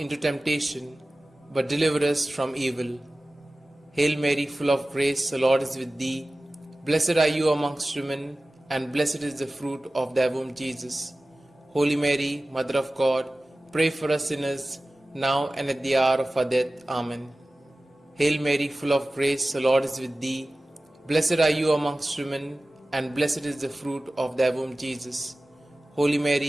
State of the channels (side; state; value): both; normal; correlation 0.97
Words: temptation, but deliver us from evil. Hail Mary, full of grace, the Lord is with thee. Blessed are you amongst women, and blessed is the fruit of thy womb, Jesus. Holy Mary, Mother of God, pray for us sinners, now and at the hour of our death. Amen. Hail Mary, full of grace, the Lord is with thee. Blessed are you amongst women, and blessed is the fruit of thy womb, Jesus. Holy